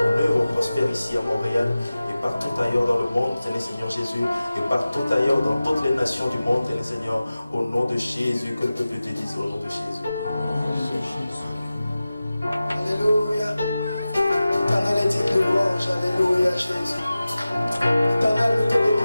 œuvre prospère ici à Montréal et partout ailleurs dans le monde, Seigneur Jésus, et partout ailleurs dans toutes les nations du monde, Seigneur, au nom de Jésus, que le peuple te dise au nom de Jésus. Alléluia. Éternel est digne de louange. Alléluia, Jésus. Éternel, nous te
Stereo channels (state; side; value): inverted; both; correlation -0.96